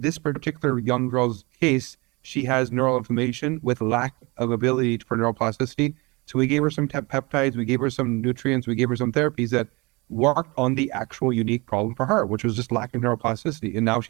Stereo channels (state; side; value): quieter; left; 25.9 dB